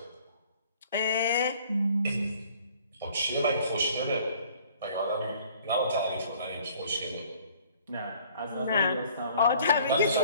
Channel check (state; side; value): inverted; both; correlation -0.55